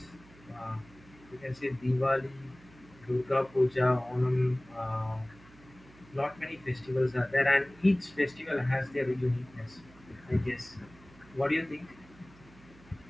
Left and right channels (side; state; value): right; noise; hum, 24 dB below the sound